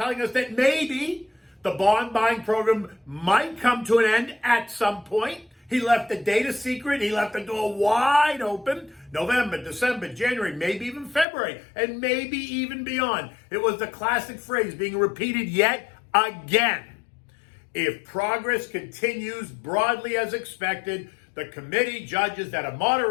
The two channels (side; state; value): right; drops out; at 11.2 s